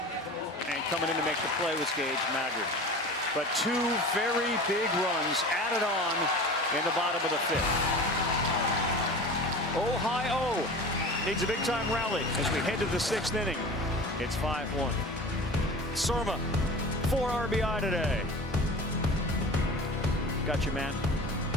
coming in to make the play was Gage Maggard. But 2 very big runs added on in the bottom of the 5th. Ohio needs a big-time rally as we head to the 6th inning. It's 5-1. Surma, 4 RBI today. Got you, man.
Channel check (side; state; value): both; normal; correlation 0.36